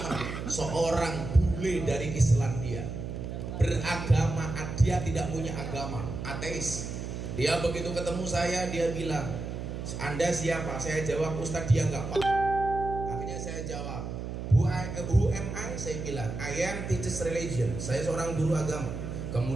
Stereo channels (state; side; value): noise; right; hum, 6 dB below the sound